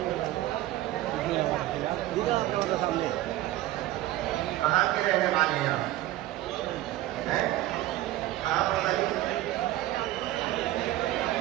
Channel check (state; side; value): quieter; left; 15.4 dB